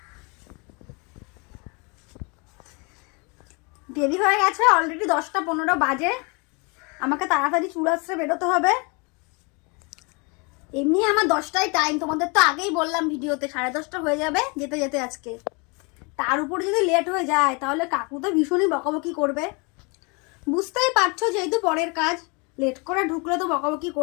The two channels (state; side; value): quieter; right; 31.1 dB